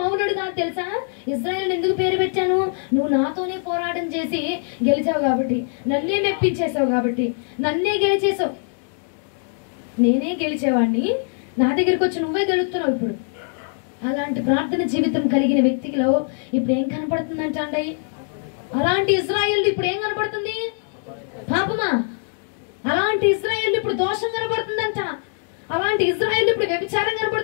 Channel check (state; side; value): silent; right; 56 dB below the other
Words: కాదు తెలుసా? ఇజ్రాయేల్ ఎందుకు పేరు పెట్టాను? నువ్వు నాతోనే పోరాటం చేసి గెలిచావు కాబట్టి, నన్నే మెప్పించేసావు కాబట్టి, నన్నే గెలిచేసావు. నేనే గెలిచేవాడిని, నా దగ్గరికి వచ్చి నువ్వే గెలుస్తున్నావు. ఇప్పుడు అలాంటి ప్రార్థన జీవితం కలిగిన వ్యక్తిలో ఇప్పుడు ఏం కనపడుతుందంట అండి? అలాంటి ఇజ్రాయేల్ ఇప్పుడు ఏం కనపడుతుంది? పాపమా. అలాంటి ఇజ్రాయేల్ ఇప్పుడు దోషం కనపడుతుందంట, అలాంటి ఇజ్రాయేల్ ఇప్పుడు వ్యభిచారం